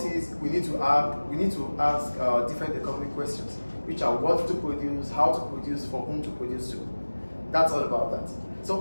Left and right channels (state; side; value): inverted; both; correlation -1.00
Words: we need to ask different economic questions, which are what to produce, how to produce, for whom to produce to. That's all about that.